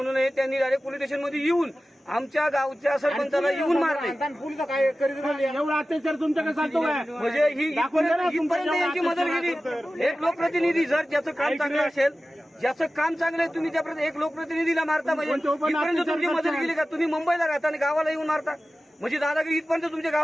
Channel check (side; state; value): both; normal; correlation 0.95